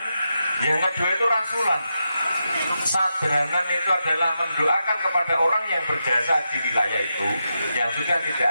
yang kedua itu rasulan. Sadranan itu adalah mendoakan kepada orang yang berjasa di wilayah itu yang sudah tidak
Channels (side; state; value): both; inverted; correlation -0.87